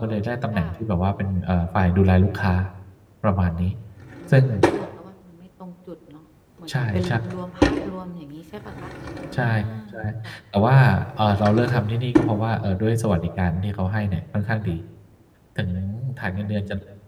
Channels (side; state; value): both; identical; correlation 1.00